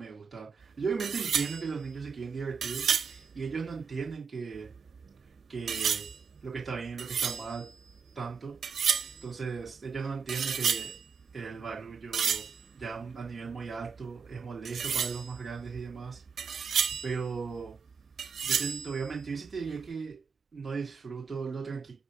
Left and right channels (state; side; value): quieter; left; 6.0 dB